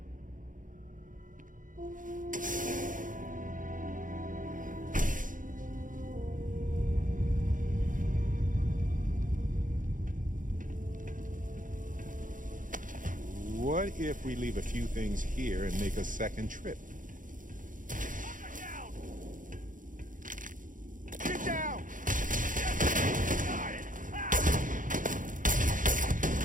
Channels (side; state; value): left; late; 0.38 ms